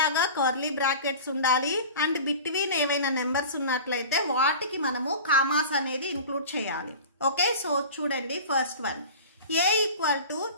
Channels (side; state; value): both; inverted; correlation -0.36